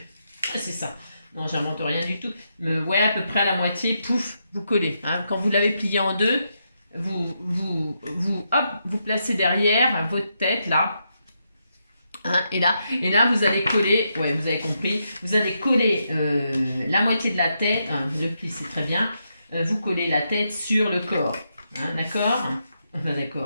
c'est ça. Non, j'invente rien du tout. Mais ouais, à peu près à la moitié, pouf, vous collez. Hein. Quand vous l'avez plié en deux, hop, vous placez derrière votre tête, là. Hein, et là, vous allez coller, ouais, vous avez compris, vous allez coller la moitié de la tête, hein, le pli, c'est très bien, vous collez la tête sur le corps. Hein, d'accord? Bah,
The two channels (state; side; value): inverted; both; correlation -0.82